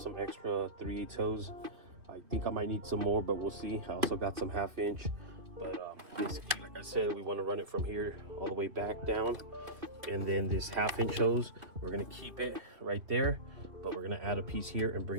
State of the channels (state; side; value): late; left; 2.8 ms